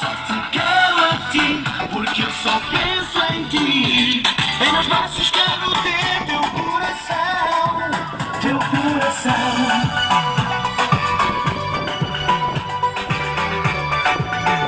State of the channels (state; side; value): identical; both; correlation 1.00